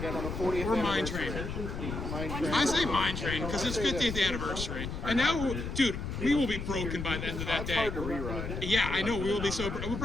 on the 40th Or Mine anniversary? Train. Mine Train. I say Mine Train because it's 50th anniversary. And now, dude, we will be broken by the end of that It's day. hard to reride. Yeah, I know. We will be so. If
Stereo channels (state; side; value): noise; left; rumble, 5 dB below the sound